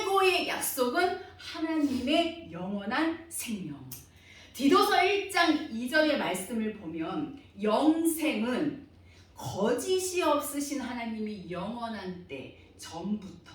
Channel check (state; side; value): identical; both; correlation 1.00